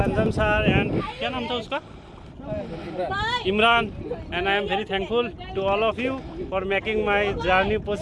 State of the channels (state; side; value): identical; both; correlation 1.00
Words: Anjum sir and क्या नाम था उसका Imran and I am very thankful to all of you for making my journey